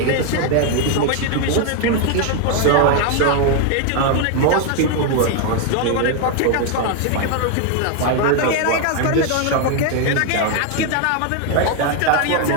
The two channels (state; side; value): different; both; correlation 0.01